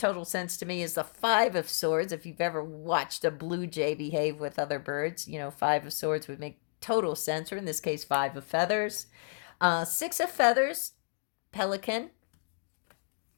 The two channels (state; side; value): silent; right; digital silence